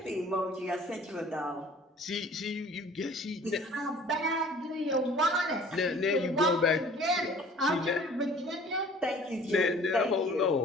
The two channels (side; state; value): both; normal; correlation 0.50